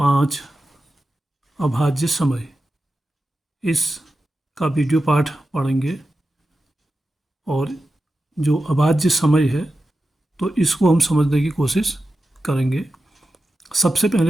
अभाज्य समय इस का वीडियो पाठ पढ़ेंगे। और जो अभाज्य समय है तो इसको हम समझने की कोशिश करेंगे। सबसे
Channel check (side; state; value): both; normal; correlation 0.92